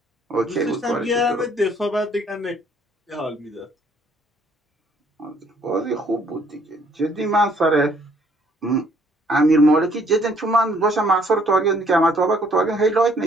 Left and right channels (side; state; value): both; normal; correlation 0.63